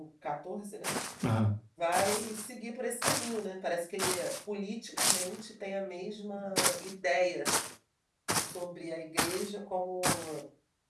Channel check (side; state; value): both; identical; correlation 1.00